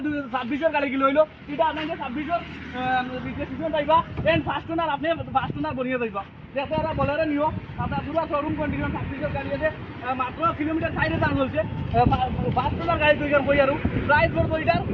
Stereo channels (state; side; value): identical; both; correlation 1.00